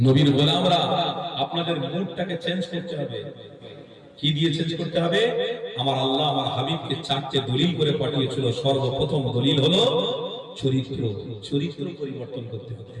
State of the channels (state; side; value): identical; both; correlation 1.00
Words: গোলামরা আপনাদের মুডটাকে চেঞ্জ করতে হবে। কি দিয়ে চেঞ্জ করতে হবে? আমার আল্লাহ আমার হাবিবকে চারটে দলিল করে পাঠিয়েছিল। সর্বপ্রথম দলিল হলো চরিত্র। চরিত্র পরিবর্তন করতে হবে।